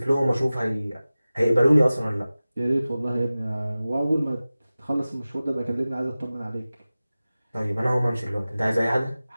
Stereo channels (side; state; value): both; inverted; correlation -0.96